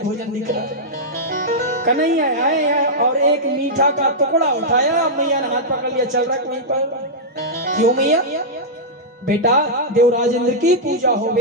भोजन दिख रहा है। कन्हैया आए और एक मीठा का टुकड़ा उठाया, मैया ने हाथ पकड़ लिया, चल रहा वहीं पर। क्यों मैया? बेटा देवराज इंद्र की पूजा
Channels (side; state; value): both; normal; correlation -0.10